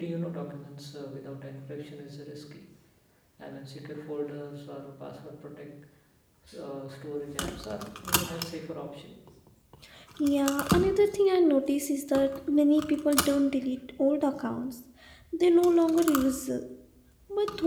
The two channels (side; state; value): both; identical; correlation 1.00